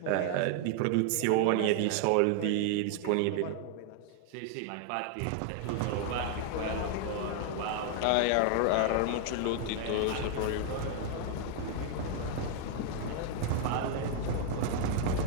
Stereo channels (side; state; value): both; different; correlation 0.00